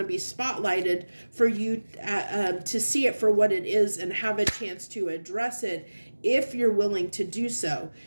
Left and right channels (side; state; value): both; inverted; correlation -1.00